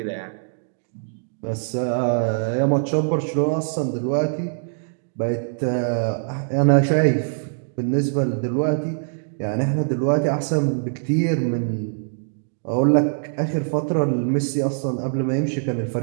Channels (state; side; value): silent; left; digital silence